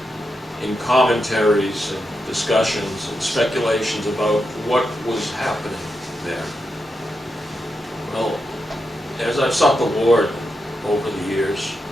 in commentaries and discussions and speculations about what was happening there. Well, as I've sought the Lord over the years,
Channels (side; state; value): both; normal; correlation 0.86